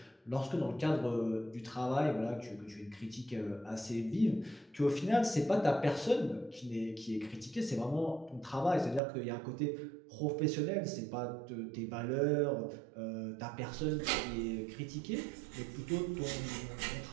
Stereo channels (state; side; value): drops out; left; at 9.0 s